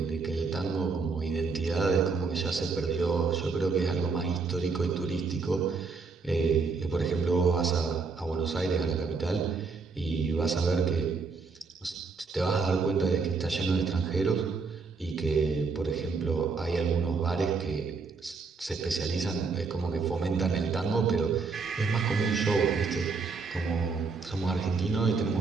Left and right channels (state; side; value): quieter; left; 4.7 dB